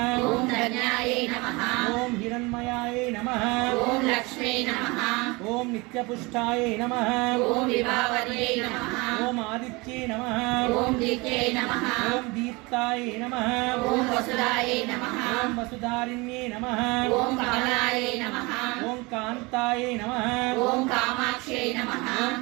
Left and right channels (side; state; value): left; quieter; 25.4 dB